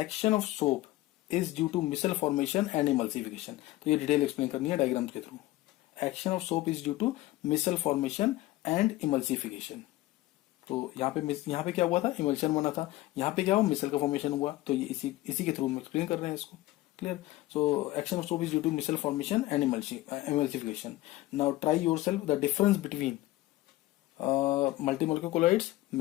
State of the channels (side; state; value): right; quieter; 17.3 dB